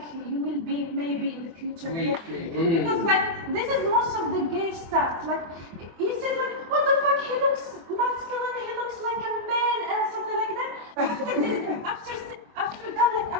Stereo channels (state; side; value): late; left; 24 ms